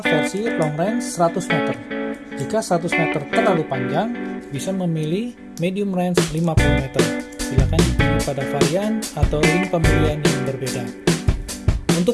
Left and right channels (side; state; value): both; identical; correlation 1.00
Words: versi long range 100 meter. Jika 100 meter terlalu panjang, bisa memilih medium range 50 meter. Silakan dipilih pada varian atau link pembelian yang berbeda.